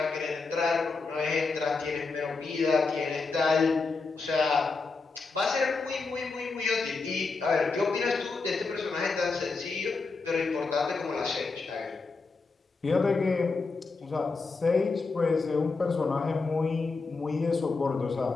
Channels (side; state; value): right; quieter; 4.2 dB